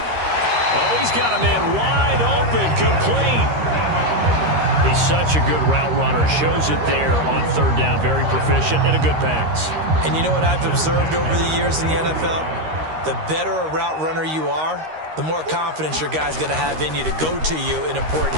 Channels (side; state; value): left; late; 13 ms